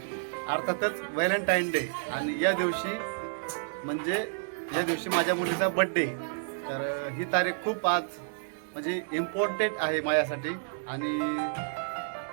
अर्थातच व्हॅलेंटाईन डे. आणि या दिवशी माझ्या मुलीचा बड्डे. तर ही तारीख खूप आज म्हणजे इम्पॉर्टंट आहे माझ्यासाठी. आणि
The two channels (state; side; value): silent; left; digital silence